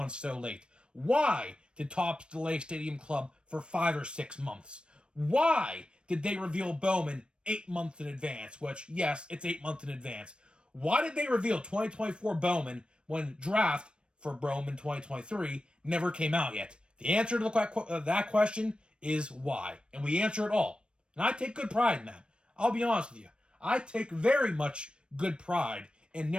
so late? Why did Topps delay Stadium Club for 5 or 6 months? Why did they reveal Bowman 8 months in advance? Which, yes, it's 8 months in advance. Why did they reveal 2024 Bowman when draft for Bowman 2023 never came out yet? The answer to that question is why. And we answer it all. And I take good pride in that. I'll be honest with you. I take very much good pride in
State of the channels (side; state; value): left; late; 0.056 ms